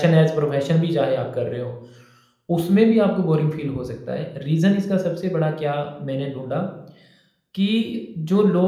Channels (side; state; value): both; identical; correlation 1.00